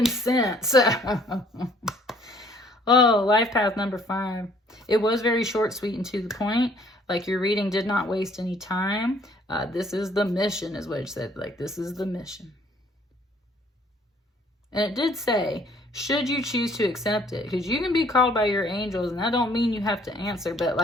sent. So, oh, life path number 5. It was very short, sweet, and to the point. Like your reading did not waste any time. This is the mission is what it said. Like this is the mission. And it did say, should you choose to accept it, because you can be called by your angels and that don't mean you have to answer, but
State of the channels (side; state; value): both; normal; correlation 0.60